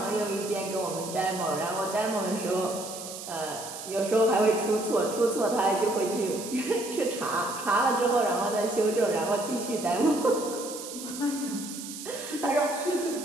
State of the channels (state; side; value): noise; right; hiss, 10 dB below the sound